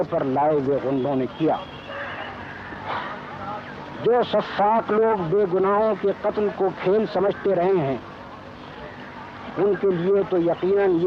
پر لائے ہوئے غنڈوں نے کیا۔ جو سفاک لوگ بے گناہوں کے قتل کو کھیل سمجھتے رہے ہیں ان کے لیے تو یقیناً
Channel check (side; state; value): both; identical; correlation 1.00